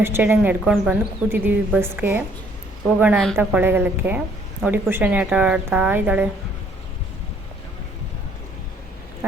ಸ್ಟ್ಯಾಂಡಿಗೆ ನಡ್ಕೊಂಡು ಬಂದು ಕೂತಿದ್ದೀವಿ ಬಸ್ಗೆ ಹೋಗೋಣ ಅಂತ ಕೊಳ್ಳೆಗಾಲಕ್ಕೆ. ನೋಡಿ ಕುಶಾನಿ ಆಟ ಆಡ್ತಾ ಇದ್ದಾಳೆ.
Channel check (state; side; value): normal; both; correlation 0.63